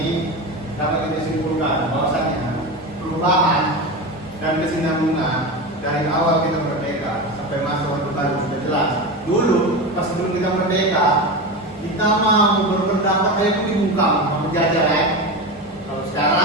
dapat kita simpulkan bahwasanya perubahan dan kesinambungan dari awal kita merdeka sampai masa Orde Baru sudah jelas. Dulu pas sebelum kita merdeka, kita mau berpendapat itu dibungkam sama penjajah ya. Kalau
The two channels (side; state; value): both; normal; correlation 0.22